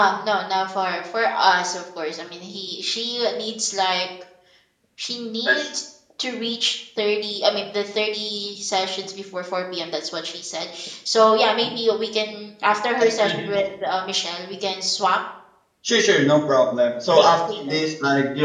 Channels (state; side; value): identical; both; correlation 1.00